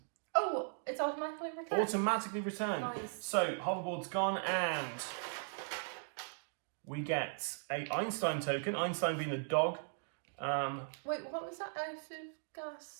Oh, it's automatically returned. Automatically return. Nice. So, hoverboard's gone and we get a Einstein token, Einstein being the dog. Wait, what was that out of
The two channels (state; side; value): silent; left; digital silence